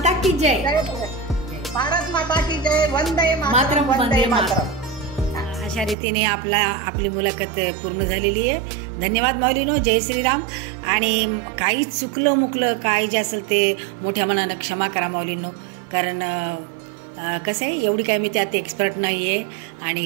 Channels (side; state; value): left; drops out; at 6.0 s